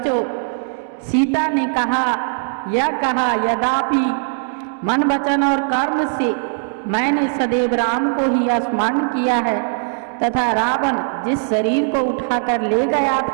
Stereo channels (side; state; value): left; silent; digital silence